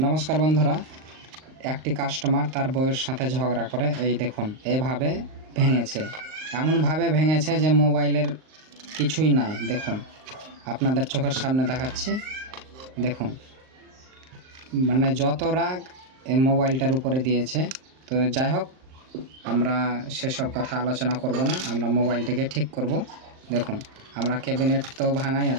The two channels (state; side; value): late; left; 38 ms